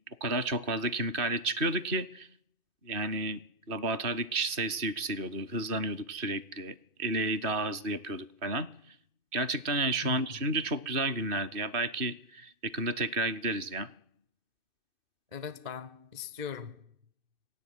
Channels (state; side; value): late; left; 2.6 ms